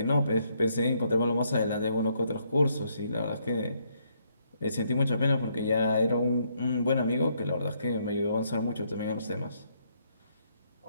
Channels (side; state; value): both; inverted; correlation -0.72